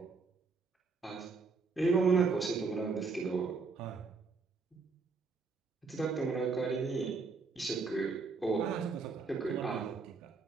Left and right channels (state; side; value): quieter; left; 4.5 dB